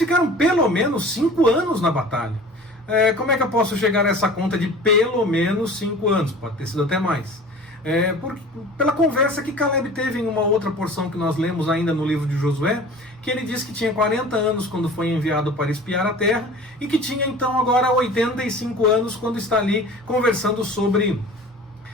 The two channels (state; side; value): normal; both; correlation 0.41